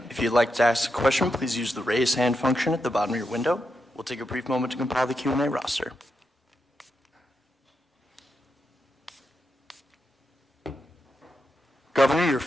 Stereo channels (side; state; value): both; normal; correlation 0.85